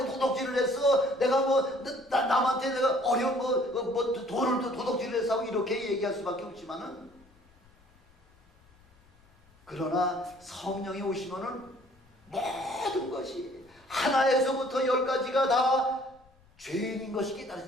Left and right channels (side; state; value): left; noise; rumble, 30 dB below the sound